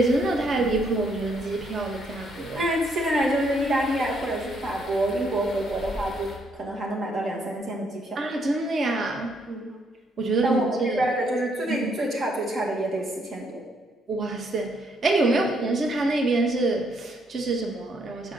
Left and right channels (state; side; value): normal; both; correlation 0.72